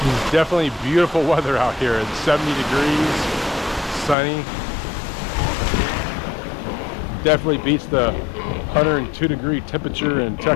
Definitely beautiful weather out here. It's 70 degrees, sunny. Definitely beats the 102-degree temperature in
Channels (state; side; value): drops out; right; at 4.2 s